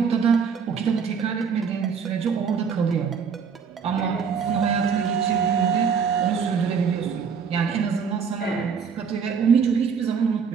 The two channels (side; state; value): left; quieter; 6.4 dB